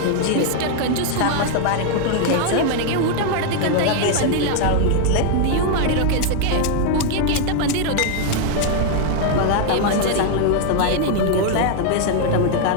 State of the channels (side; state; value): both; different; correlation 0.00